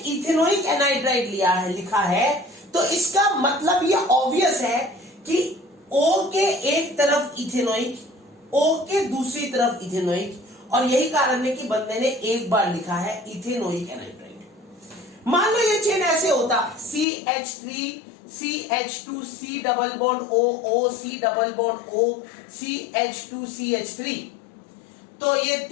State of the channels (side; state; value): right; drops out; at 17.1 s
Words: एनहाइड्राइड लिया है, लिखा है, तो इसका मतलब ये ऑब्वियस है कि O के एक तरफ इथेनोइक, O के दूसरी तरफ इथेनोइक, और यही कारण है कि बंदे ने एक बार लिखा है इथेनोइक एनहाइड्राइड। मान लो ये चेन ऐसे होता CH3 CH2 C double bond O C double bond O CH2 CH3, तो ये